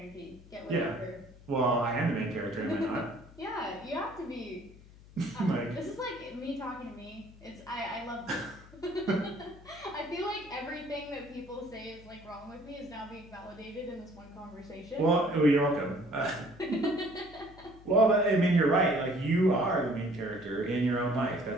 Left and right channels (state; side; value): noise; left; hum, 21 dB below the sound